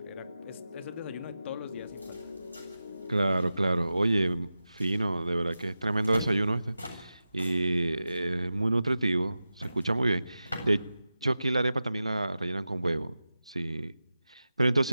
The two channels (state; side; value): inverted; both; correlation -0.93